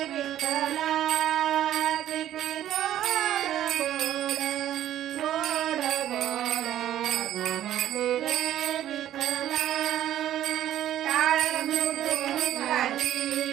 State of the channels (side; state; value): left; quieter; 12.0 dB